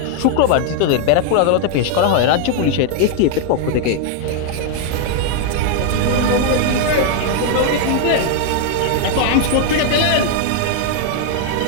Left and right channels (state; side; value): different; both; correlation 0.00